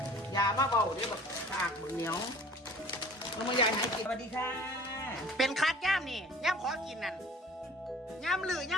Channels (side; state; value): both; normal; correlation 0.48